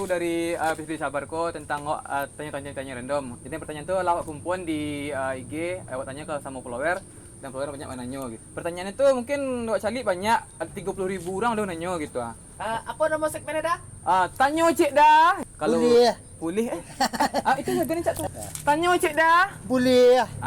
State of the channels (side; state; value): both; identical; correlation 1.00